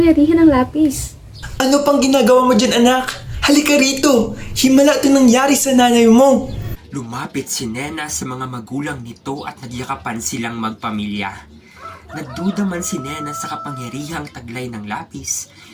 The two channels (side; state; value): both; identical; correlation 1.00